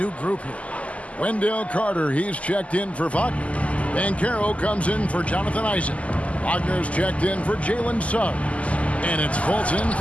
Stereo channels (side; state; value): right; late; 0.066 ms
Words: group here. Wendell Carter, he's checked in for Wagner. Banchero comes in for Jonathan Isaac. Wagner's checked in for Jalen Suggs. And it's Fultz in